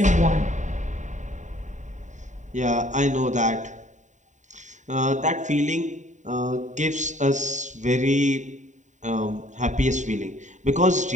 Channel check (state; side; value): late; left; 0.35 ms